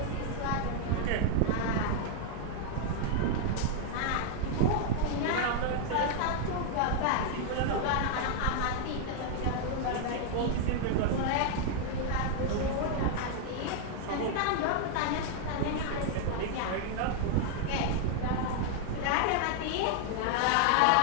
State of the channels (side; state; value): both; different; correlation 0.00